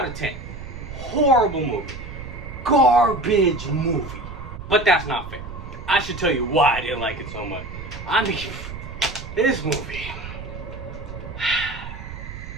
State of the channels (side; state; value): right; noise; rumble, 10 dB below the sound